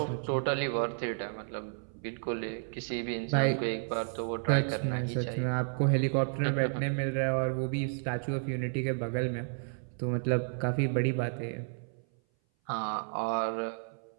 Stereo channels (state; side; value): silent; left; 57 dB below the other